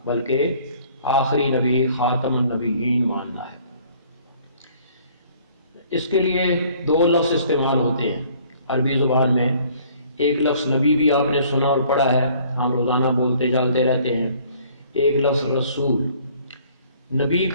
بلکہ آخری نبی خاتم النبیین ماننا ہے۔ اس کے لیے 2 لفظ استعمال ہوتے ہیں عربی زبان میں۔ ایک لفظ نبی بھی آپ نے سنا اور پڑھا ہے، ہم روزانہ بولتے چلتے رہتے ہیں۔ ایک لفظ رسول۔ نبی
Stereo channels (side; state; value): both; inverted; correlation -0.57